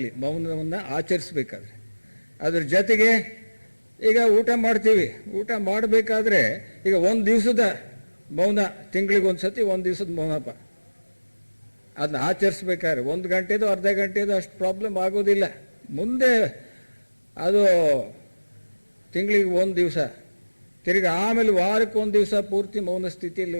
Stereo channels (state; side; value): inverted; both; correlation -1.00